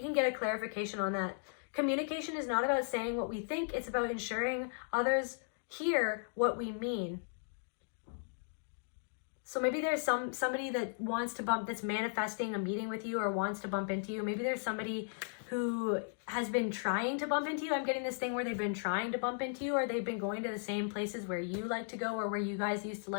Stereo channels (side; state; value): right; silent; digital silence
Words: get a clarification on that. Communication is not about saying what we think. It's about ensuring others hear what we mean. So maybe there's somebody that wants to that's manifesting a meeting with you or wants to bump into you. Maybe there's somebody who has been trying to bump into you. I'm getting this thing where they've been trying to bump into you, or they've been going to the same places where you like to go, or where you guys used to